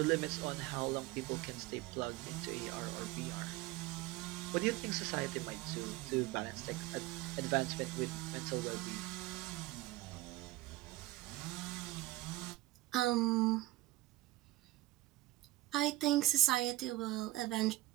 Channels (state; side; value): quieter; left; 18.2 dB